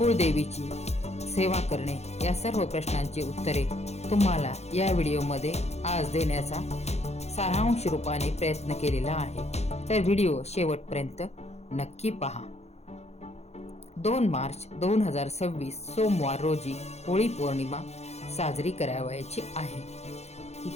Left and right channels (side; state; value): right; late; 0.31 ms